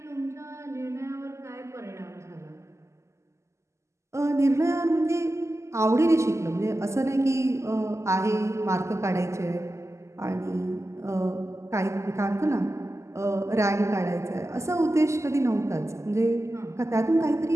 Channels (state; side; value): late; left; 0.13 ms